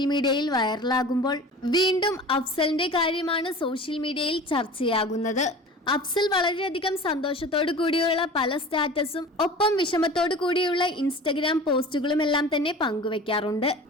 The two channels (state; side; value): normal; both; correlation 0.38